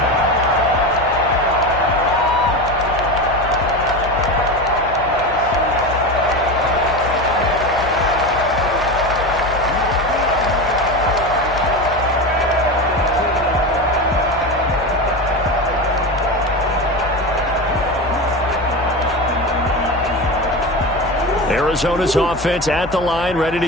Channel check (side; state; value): left; noise; hum, 14 dB below the sound